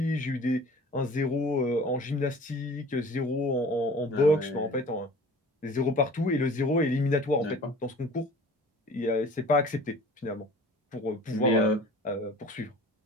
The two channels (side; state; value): both; normal; correlation 0.45